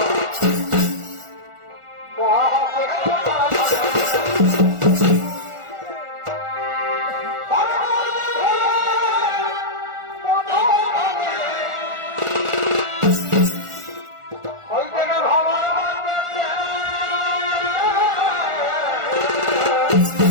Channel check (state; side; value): late; left; 1.4 ms